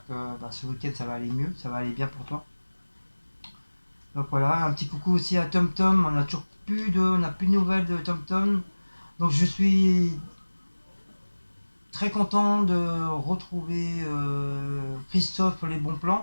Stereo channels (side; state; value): both; inverted; correlation -1.00